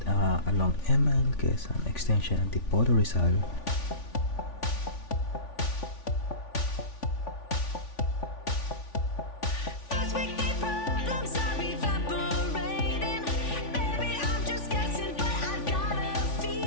along Quezon Extension, Antipolo, Rizal.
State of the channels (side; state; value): right; late; 3.5 ms